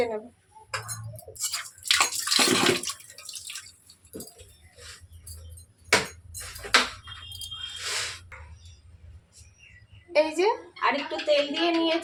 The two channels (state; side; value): identical; both; correlation 1.00